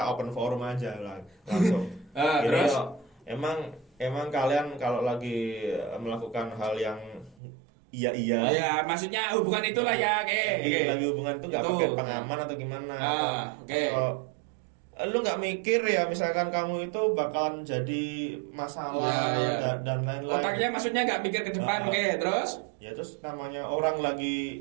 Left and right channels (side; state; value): left; drops out; at 7.4 s